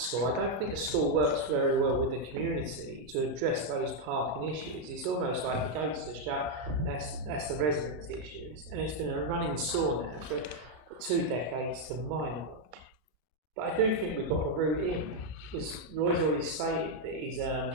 I don't think the school works very well with the community to address those parking issues. It's almost like the gates are shut, that's the residents' issues. And it's been a running sore now for 2 decades to my knowledge. But I do think we've got a route in, because Roy's already stated that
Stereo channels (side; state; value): left; late; 33 ms